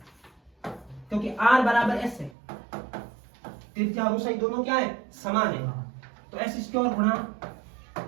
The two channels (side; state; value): left; drops out; at 2.4 s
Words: क्योंकि आर बराबर एस है। त्रिज्या और ऊंचाई दोनों क्या है? समान है। तो एस स्क्वायर गुणा